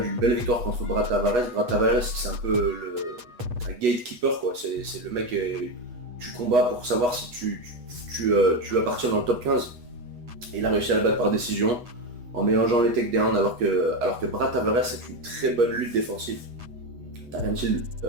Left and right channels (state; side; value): late; left; 8.2 ms